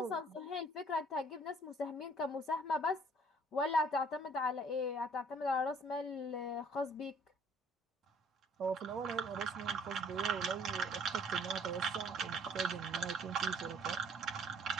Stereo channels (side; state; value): both; normal; correlation 0.57